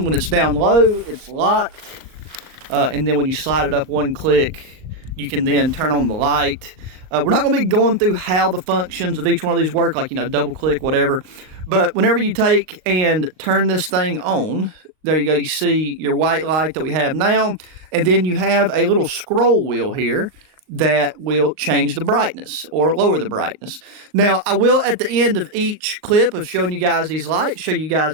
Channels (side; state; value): left; late; 38 ms